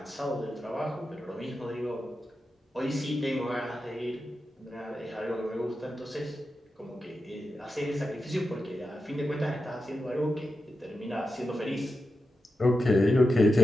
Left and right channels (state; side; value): normal; both; correlation 0.90